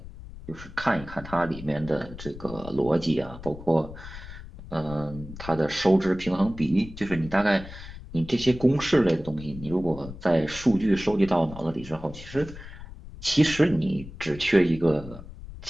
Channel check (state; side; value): noise; left; rumble, 14 dB below the sound